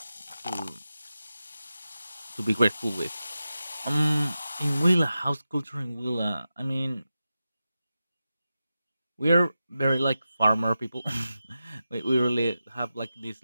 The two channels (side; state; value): both; inverted; correlation -0.92